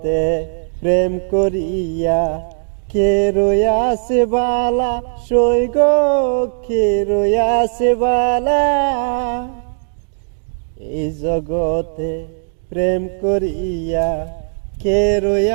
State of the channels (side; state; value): left; silent; digital silence